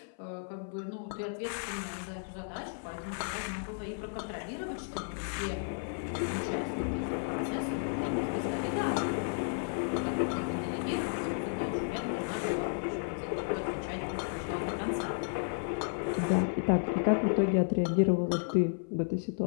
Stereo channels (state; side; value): silent; right; 56 dB below the other